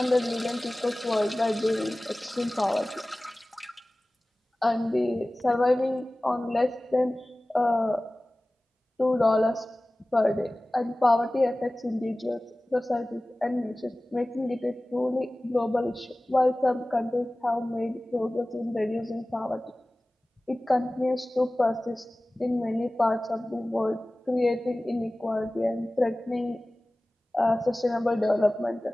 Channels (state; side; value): normal; both; correlation 0.98